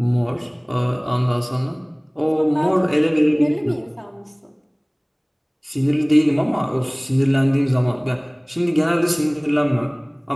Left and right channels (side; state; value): both; identical; correlation 1.00